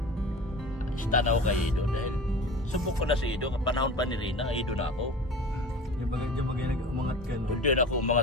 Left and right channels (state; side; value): normal; both; correlation 0.37